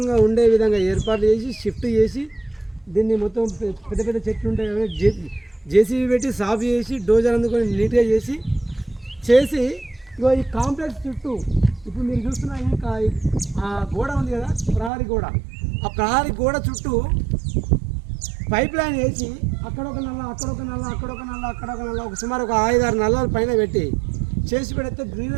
ఉండే విధంగా ఏర్పాటు చేసి షిఫ్ట్ చేసి దీన్ని మొత్తం పెద్ద పెద్ద చెట్లు ఉంటాయి కదా జేసీబీ పెట్టి సాఫ్ చేసి డోజర్ అందుకొని నీట్గా చేసి ఇగో ఈ కాంప్లెక్స్ చుట్టూ ఇప్పుడు మీరు చూస్తున్న ఆ గోడ ఉంది కదా ప్రహరీ గోడ, ఆ ప్రహరీ గోడ చుట్టూ పైప్ లైన్ వేసి అక్కడొక నల్ల అక్కడొక నల్ల అక్కడొక నల్ల అక్కడొక నల్ల ఒక సుమారు ఒక 5-6 నల్లల పైన పెట్టి చేసి పెడితే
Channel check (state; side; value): drops out; left; at 14.9 s